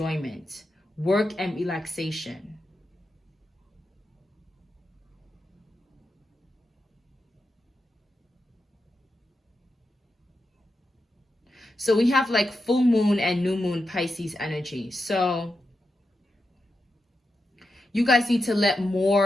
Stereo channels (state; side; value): normal; both; correlation 0.88